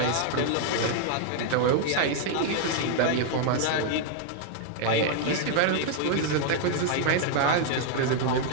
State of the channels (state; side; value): different; both; correlation 0.00